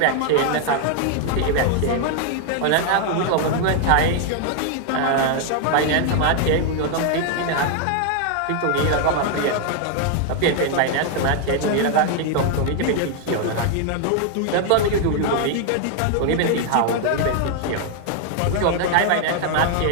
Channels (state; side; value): different; both; correlation 0.00